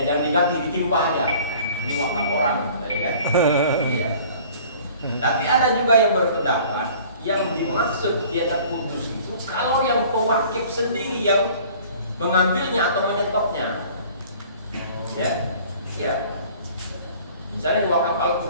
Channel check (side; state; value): both; inverted; correlation -0.50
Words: jangan diganti, ditimpa aja. Ini wakaf orang, ya kan? Iya. Tapi ada juga yang berpendapat yang dimaksud dia terputus itu kalau yang pewakif sendiri yang mengambilnya atau menyetopnya. Ya. Misalnya wakaf